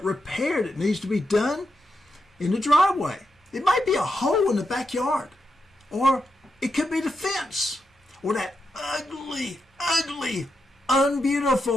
repair that needs to be done in the driveway. It might be a hole in the backyard. Or it could be the fence. Or that ugly,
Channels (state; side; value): normal; both; correlation 0.85